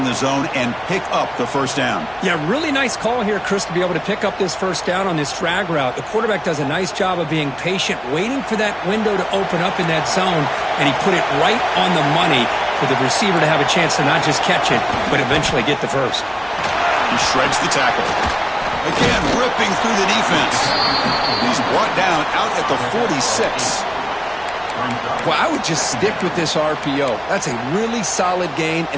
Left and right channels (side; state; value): right; noise; hum, 26 dB below the sound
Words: the zone and pick up the first down. Yeah, really nice call here, Chris, to be able to pick up this first down on this drag route. The quarterback does a nice job of being patient, waiting for that window to open up in that zone, and he put it right on the money for the receiver to have a chance to not just catch it, but eventually get the first. He shreds the tackle. Again, ripping through the defense. He's brought down out at the 46. Well, I would just stick with this RPO. That's a really solid gain,